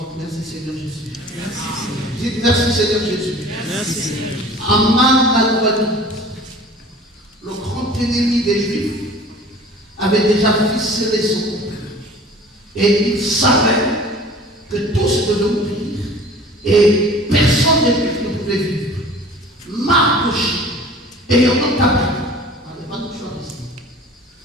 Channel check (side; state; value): both; normal; correlation 0.45